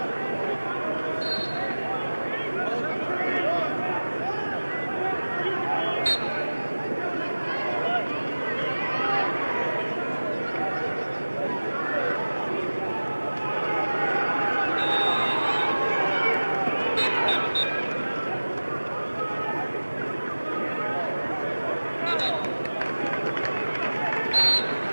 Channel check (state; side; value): inverted; both; correlation -1.00